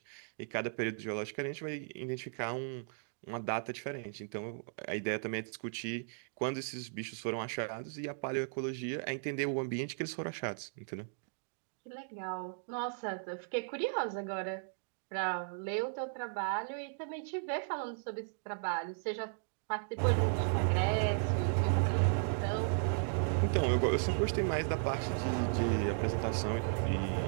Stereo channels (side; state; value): left; silent; digital silence